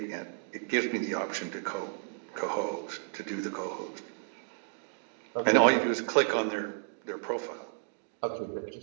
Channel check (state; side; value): silent; left; digital silence